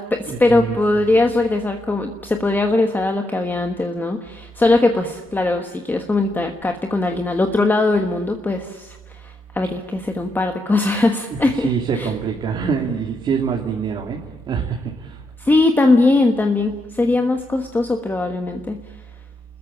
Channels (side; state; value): both; normal; correlation 0.82